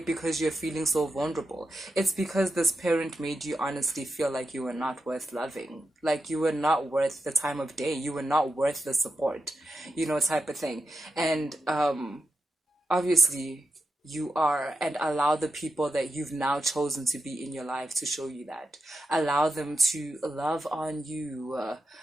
you're feeling so vulnerable. It's because this parent made you honestly feel like you were not worth loving, like you were not worth the time of day, you were not worth the support, type of thing. And obviously you are, and allow the people that you've now chosen to be in your life to show you that. Allow them to love on you,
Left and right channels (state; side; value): normal; both; correlation 0.88